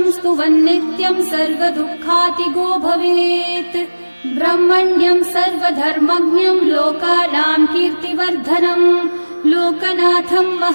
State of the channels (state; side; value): inverted; both; correlation -1.00